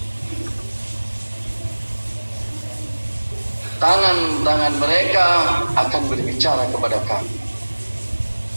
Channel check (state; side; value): inverted; both; correlation -1.00